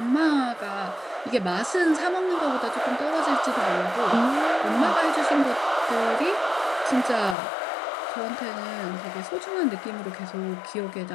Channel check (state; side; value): drops out; right; at 7.4 s